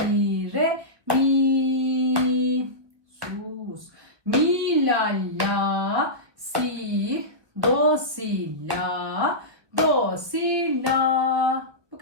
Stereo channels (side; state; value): left; late; 1.4 ms